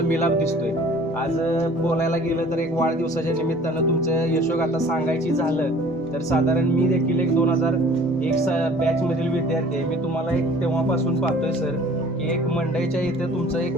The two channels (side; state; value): both; normal; correlation 0.50